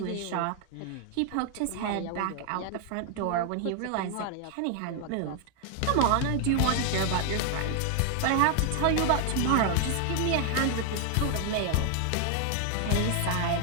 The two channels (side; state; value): both; different; correlation 0.00